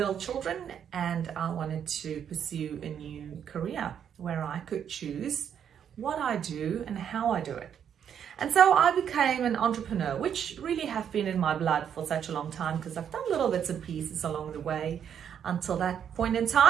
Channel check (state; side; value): quieter; left; 8.6 dB